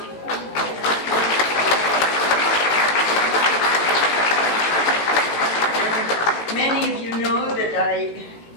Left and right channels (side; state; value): right; late; 18 ms